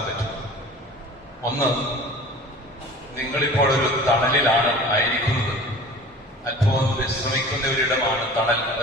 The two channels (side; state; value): both; normal; correlation 0.42